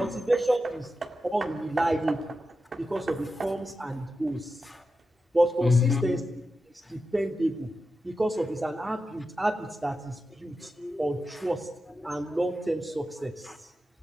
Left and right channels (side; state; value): both; normal; correlation 0.90